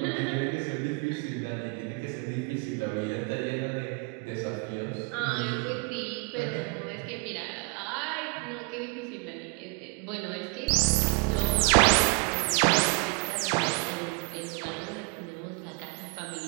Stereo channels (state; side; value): quieter; left; 32.1 dB